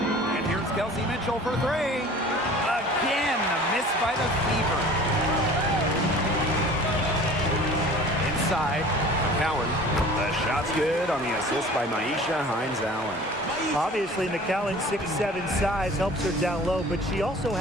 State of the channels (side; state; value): both; normal; correlation 0.45